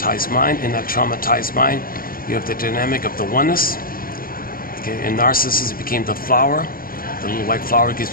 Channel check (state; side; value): late; right; 0.42 ms